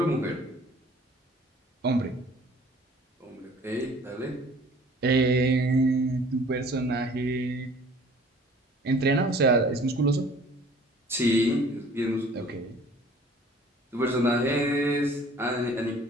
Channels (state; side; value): normal; both; correlation 0.51